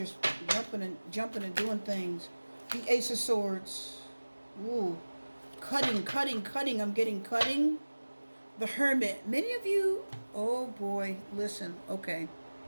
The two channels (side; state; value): both; inverted; correlation -1.00